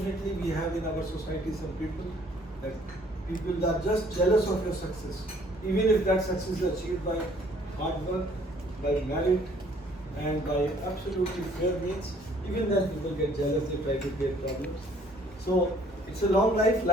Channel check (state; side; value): normal; both; correlation 0.60